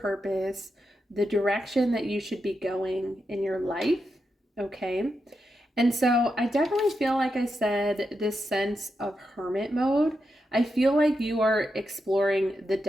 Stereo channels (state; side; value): normal; both; correlation 0.86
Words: the direction that you should be going in your life, okay? And so I definitely feel, like I said, this sense of hermit mode. I feel like you are exploring the